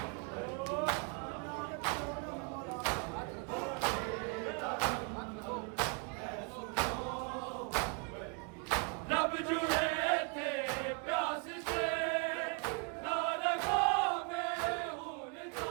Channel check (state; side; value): quieter; left; 35.4 dB